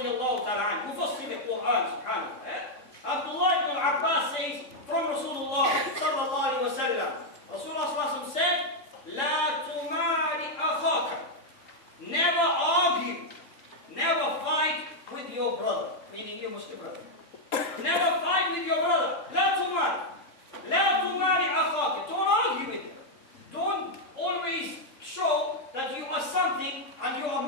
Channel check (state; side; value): late; right; 3.6 ms